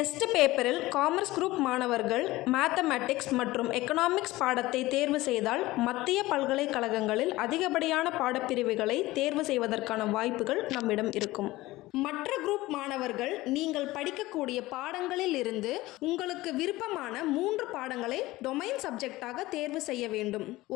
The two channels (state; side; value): quieter; right; 18.5 dB